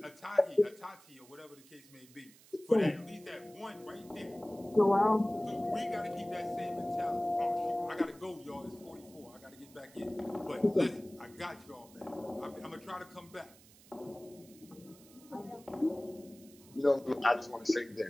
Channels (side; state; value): right; noise; hiss, 24 dB below the sound